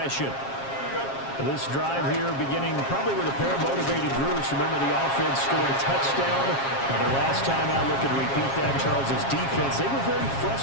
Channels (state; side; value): late; right; 7.4 ms